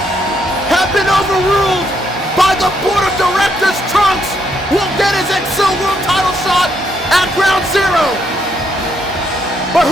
have been overruled by the board of directors. Trunks will get his Excel World title shot at Ground Zero. But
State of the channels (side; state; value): both; normal; correlation 0.75